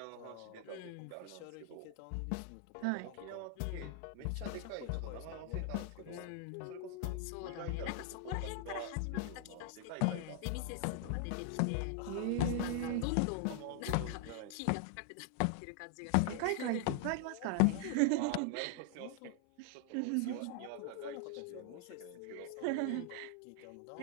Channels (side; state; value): both; different; correlation 0.00